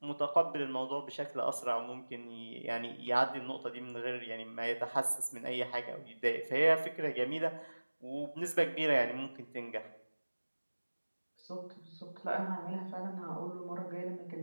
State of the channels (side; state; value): both; inverted; correlation -1.00